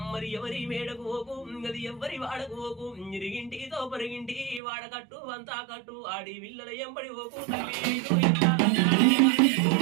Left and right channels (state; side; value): drops out; left; at 4.6 s